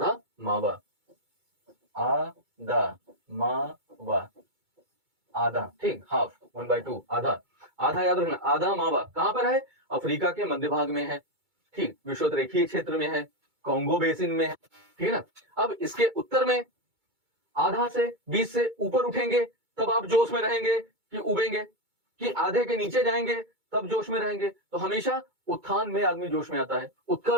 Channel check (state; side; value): late; left; 2.2 ms